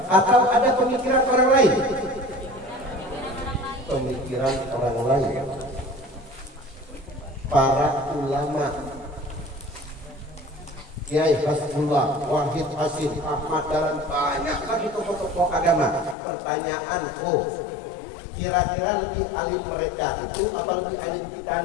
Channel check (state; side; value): drops out; right; at 16.2 s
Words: atau ada pemikiran orang lain? Pemikiran orang lain. Para ulama, Kiai Hasbullah, Wahid Hasim, Ahmad Dahlan, banyak lagi tokoh-tokoh agama. Pertanyaanku, kira-kira lebih alim mereka itu apa lebih alim kita